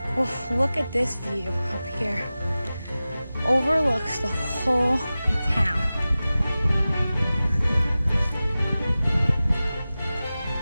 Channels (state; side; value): inverted; both; correlation -0.96